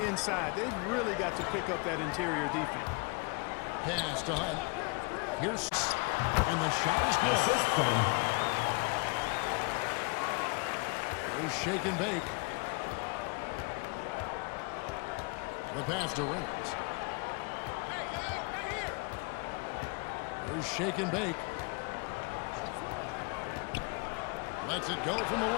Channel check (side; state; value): right; quieter; 30.6 dB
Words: inside. They've really got to pick up that interior defense. Pass to Hunt. Here's and the shot is good. Here's Shake and Bake. The pass to Reynolds. Here's Shake and Bake. Lets it go from the